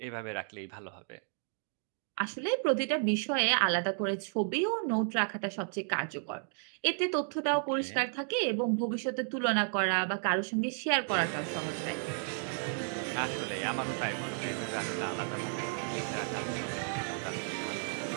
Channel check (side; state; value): left; silent; 55 dB below the other